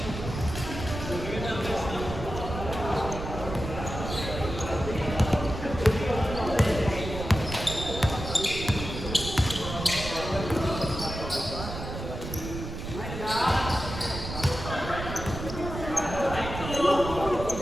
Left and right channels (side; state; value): right; noise; rumble, 7 dB below the sound